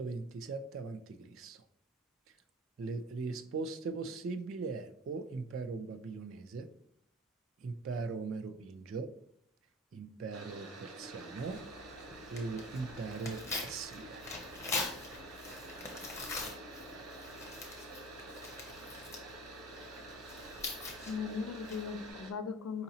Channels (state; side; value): normal; both; correlation 0.40